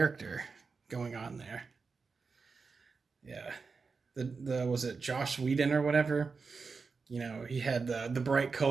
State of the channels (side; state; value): left; quieter; 4.7 dB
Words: going on there. Yeah, the was it Joss Whedon or whatever? He had the bright,